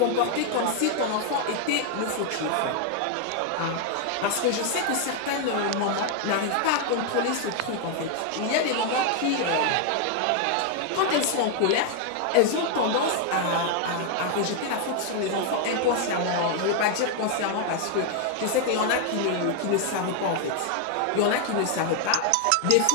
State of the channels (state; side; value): different; both; correlation 0.00